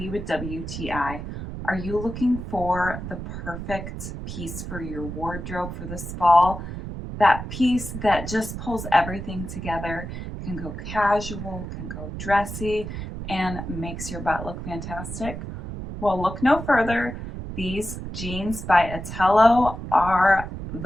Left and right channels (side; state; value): right; noise; rumble, 8 dB below the sound